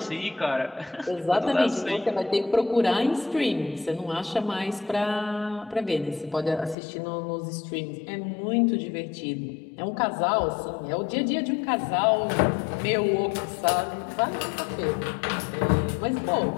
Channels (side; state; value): right; drops out; at 6.8 s